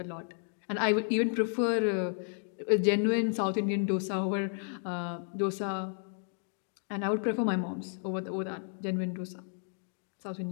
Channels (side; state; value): right; silent; 56 dB below the other